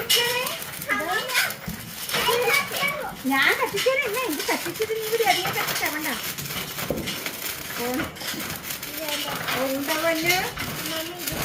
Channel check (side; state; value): both; identical; correlation 1.00